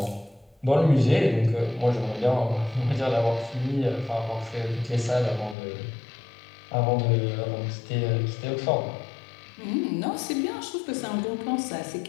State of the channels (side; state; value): right; drops out; at 5.6 s